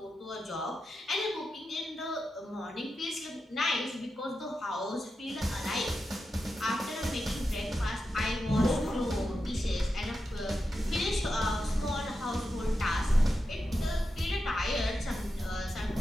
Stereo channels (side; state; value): both; normal; correlation 0.89